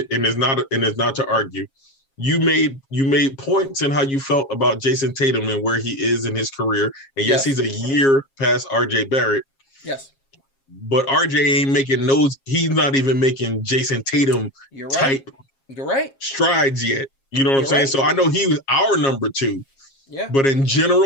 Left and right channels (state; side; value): late; right; 7.4 ms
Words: and it's not to argue. You made points in how you felt about Jason Tatum and where he is in his career. And yes, he's a year past RJ Barrett. Yes. But RJ ain't making he's not even making Jason Tatum type strides yet. You know what I'm saying? Right. So I know he was our number 2. Yeah. But in